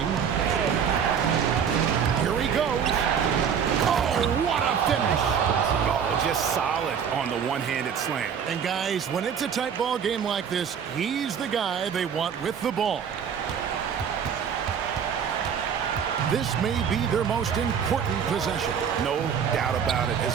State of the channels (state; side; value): quieter; left; 7.5 dB